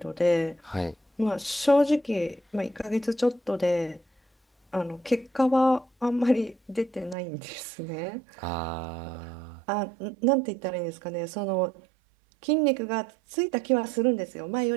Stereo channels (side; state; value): left; drops out; at 7.2 s